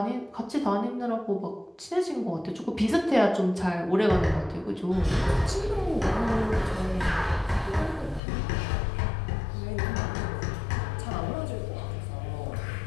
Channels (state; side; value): drops out; right; at 8.2 s